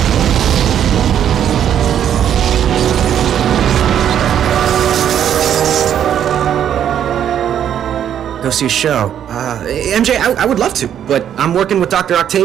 Go see a show. MJ, I would love to, but I'm working with Dr.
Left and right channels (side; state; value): left; quieter; 9.7 dB